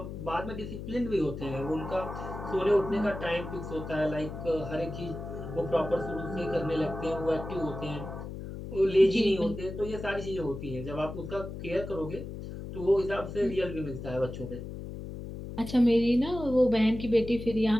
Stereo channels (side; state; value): left; noise; hum, 9 dB below the sound